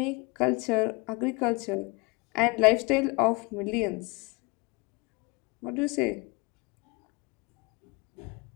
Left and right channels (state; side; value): quieter; right; 27.6 dB